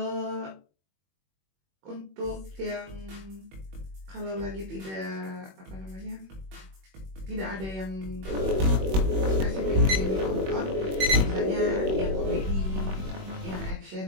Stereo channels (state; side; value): late; left; 21 ms